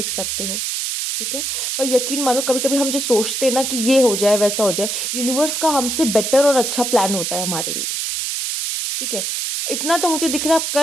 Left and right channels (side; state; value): right; noise; hiss, 2 dB below the sound